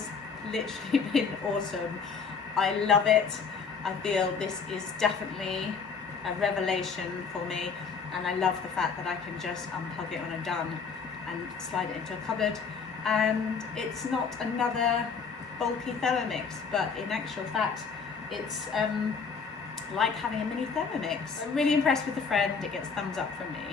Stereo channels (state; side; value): quieter; right; 5.5 dB